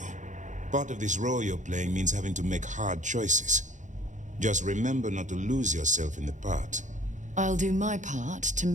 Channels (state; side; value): late; left; 0.36 ms